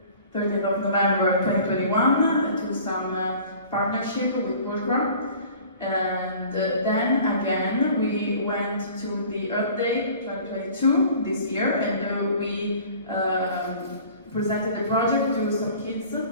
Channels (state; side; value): inverted; both; correlation -0.47